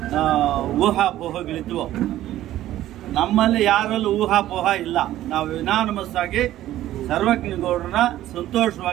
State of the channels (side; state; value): left; quieter; 13.8 dB